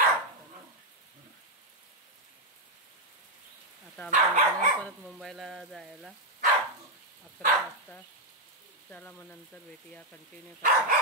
आता आम्ही निघणार परत मुंबईला जायला 11 वाजता. चला मग नंतर भेटूया. कंटिन्यू करा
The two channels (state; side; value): normal; both; correlation -0.01